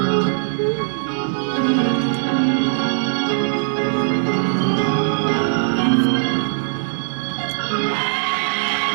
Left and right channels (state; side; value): silent; left; digital silence